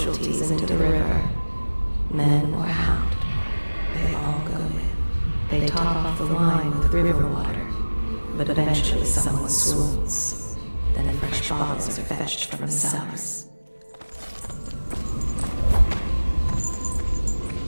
into the river. Men or hound, they all go in. They top off the wine with river water, but eventually someone swoons. Then fresh bottles are fetched from the cellars.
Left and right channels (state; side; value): inverted; both; correlation -1.00